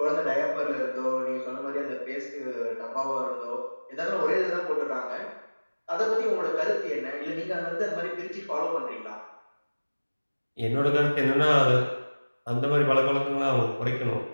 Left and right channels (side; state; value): both; inverted; correlation -1.00